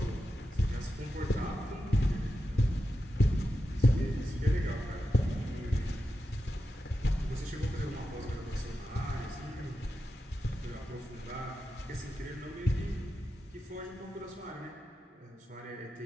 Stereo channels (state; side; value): normal; both; correlation 0.90